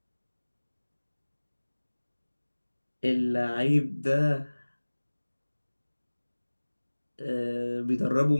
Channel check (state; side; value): inverted; both; correlation -1.00